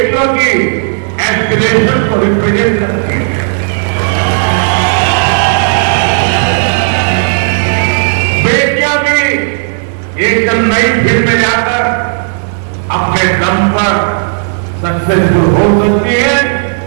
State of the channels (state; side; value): silent; left; digital silence